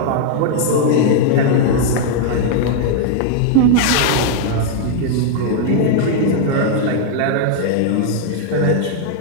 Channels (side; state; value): both; different; correlation -0.01